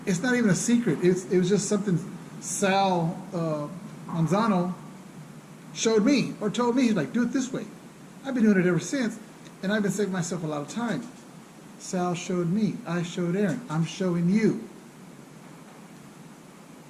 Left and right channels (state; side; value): identical; both; correlation 1.00